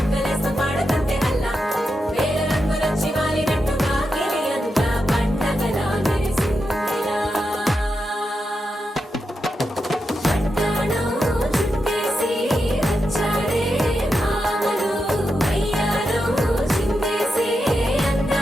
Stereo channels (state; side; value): normal; both; correlation 0.87